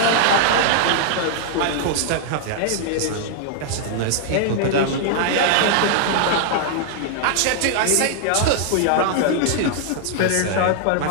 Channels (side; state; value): both; different; correlation -0.01